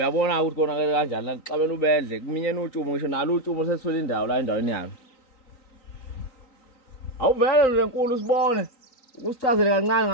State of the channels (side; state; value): right; late; 3.9 ms